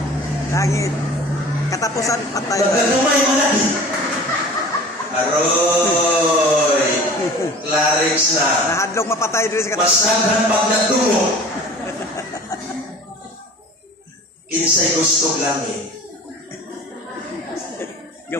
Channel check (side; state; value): both; normal; correlation 0.43